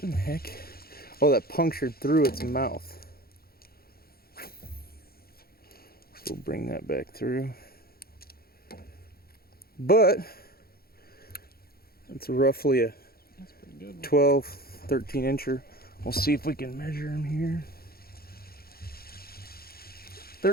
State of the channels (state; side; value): late; right; 0.44 ms